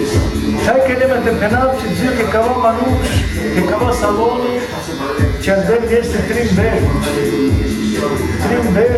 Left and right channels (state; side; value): identical; both; correlation 1.00